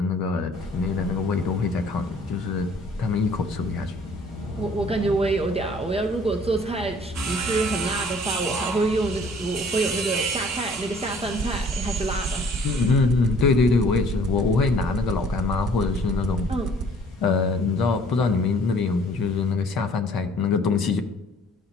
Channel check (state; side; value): normal; both; correlation 0.56